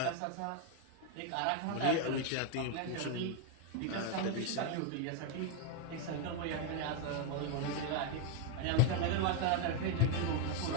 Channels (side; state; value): both; different; correlation 0.01